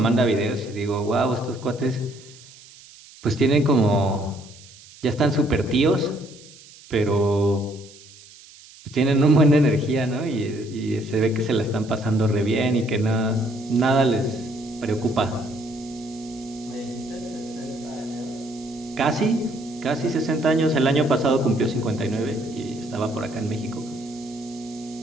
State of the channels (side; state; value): right; noise; hiss, 21 dB below the sound